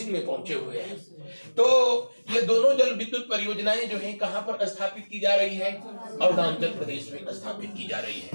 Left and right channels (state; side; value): inverted; both; correlation -1.00